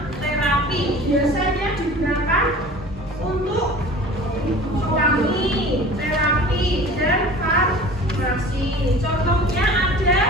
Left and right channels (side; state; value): both; normal; correlation 0.42